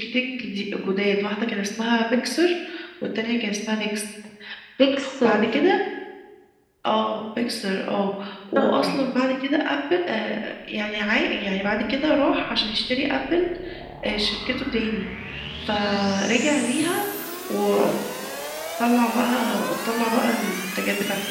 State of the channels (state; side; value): identical; both; correlation 1.00